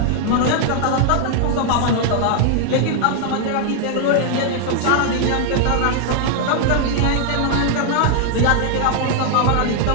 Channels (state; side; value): different; both; correlation 0.00